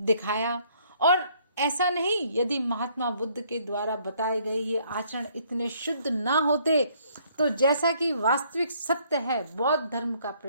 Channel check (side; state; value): both; inverted; correlation -0.64